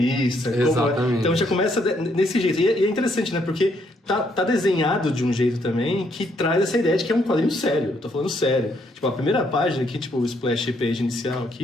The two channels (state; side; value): normal; both; correlation 0.72